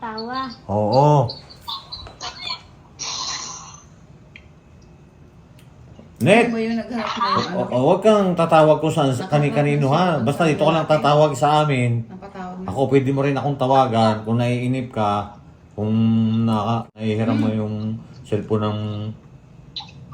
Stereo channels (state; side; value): identical; both; correlation 1.00